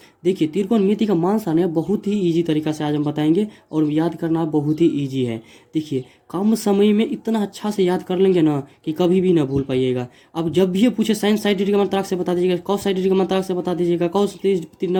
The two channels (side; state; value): both; identical; correlation 1.00